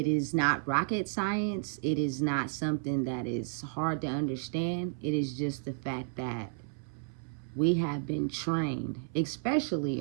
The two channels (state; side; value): silent; left; 56 dB below the other